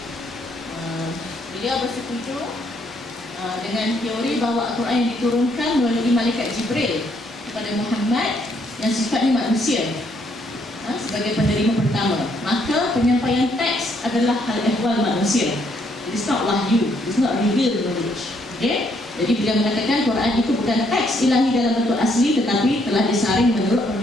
Beliau bersetuju dengan teori bahawa Al-Quran yang diturunkan melalui malaikat Jibril kepada Muhammad yang sifatnya manusia sebagai penerima pertama, maka penyampaian teks adalah hal ehwal manusia. It's not wahyu, it's not revealed knowledge. Jadi beliau mengatakan Quran itu bukan teks ilahi dalam bentuk asli, tetapi telah disaring menurut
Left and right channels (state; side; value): normal; both; correlation 0.71